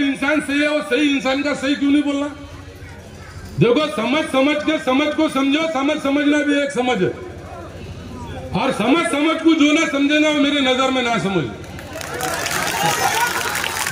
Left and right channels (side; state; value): both; identical; correlation 1.00